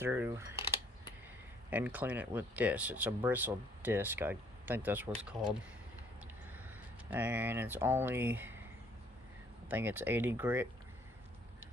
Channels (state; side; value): normal; both; correlation 0.63